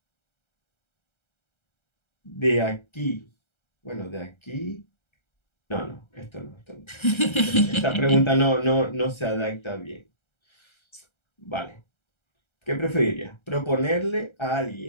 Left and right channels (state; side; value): late; right; 1.3 ms